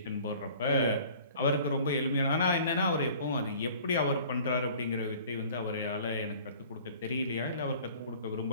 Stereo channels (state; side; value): inverted; both; correlation -0.49